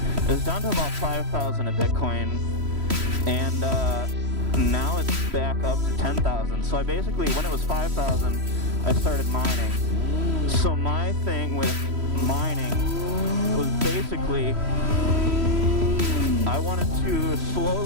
about 5,000 a Bitcoin, and now it's back up to 10,000. So I basically, when it was 5,000, I started mining. So my thing with mining was basically, I wanted to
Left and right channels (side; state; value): left; late; 3.1 ms